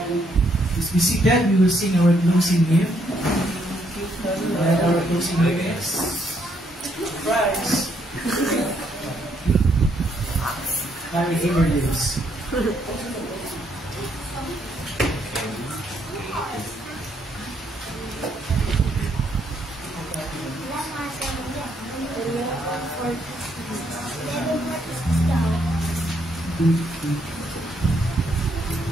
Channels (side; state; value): both; normal; correlation 0.73